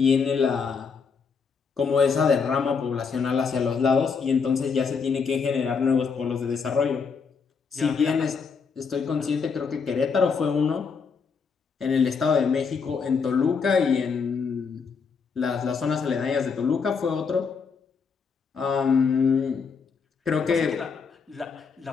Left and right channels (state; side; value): quieter; right; 5.6 dB